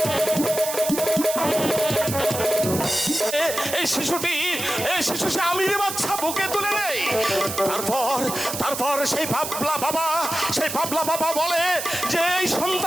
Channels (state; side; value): noise; right; hiss, 6 dB below the sound